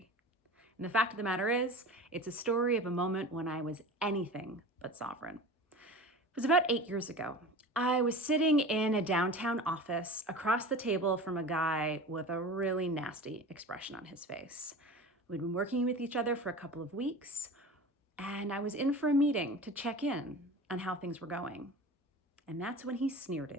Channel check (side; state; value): both; normal; correlation 0.34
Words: And the fact of the matter is, it's a story of a moment when I was anything but sovereign. It was about 8 years ago. I was sitting in a downtown office across the table from a guy with a really nasty expression on his face. We'd been working with each other for a couple of weeks, and I was in for a meeting to check in on how things were going. And that's when he sneered